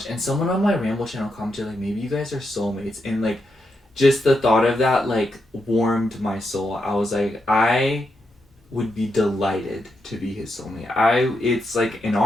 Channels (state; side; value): normal; both; correlation 0.83